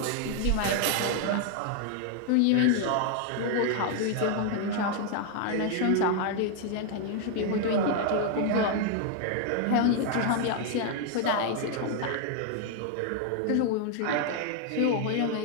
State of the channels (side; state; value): both; different; correlation 0.00